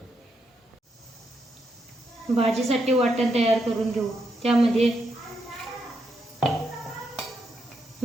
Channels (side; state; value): both; normal; correlation 0.80